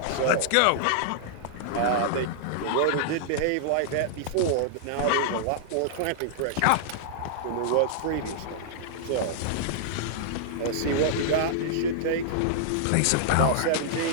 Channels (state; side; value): different; both; correlation -0.01